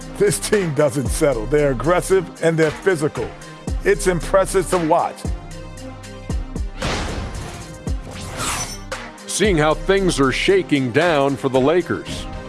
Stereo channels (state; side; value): identical; both; correlation 1.00